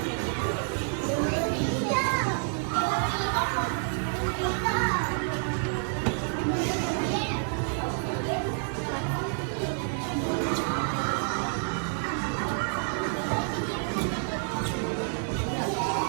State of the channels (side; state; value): left; silent; 59 dB below the other